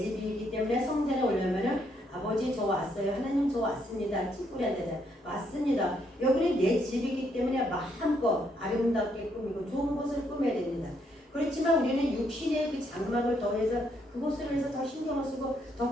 때문에 성전에 오려면은 아버지 저 왔어요. 하나님 저 왔습니다. 찌뿌리한테 왔습니다. 여기는 내 집이기 때문에 마음껏 아름답게 꾸미고 좋은 곳을 꾸며야 됩니다. 그렇지만 우리는 육신의 그 장막을 더해서 그곳으로 해서 더 신경을 쓰고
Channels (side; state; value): both; normal; correlation 0.73